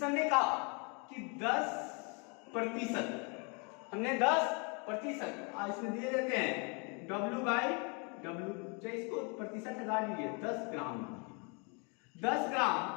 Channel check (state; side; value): quieter; right; 34.4 dB